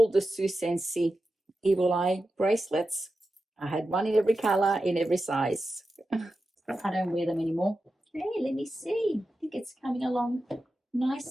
the Sue Sensi Evil Eye bracelets. I had one in every color, in every size. I don't wear them anymore. Hey, let me see. I think it's coming along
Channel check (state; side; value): normal; both; correlation 0.91